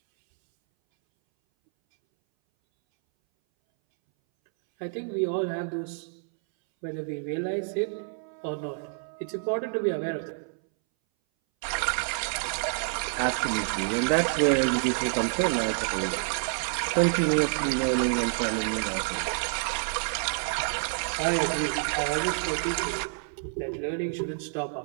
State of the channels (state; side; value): silent; left; 59 dB below the other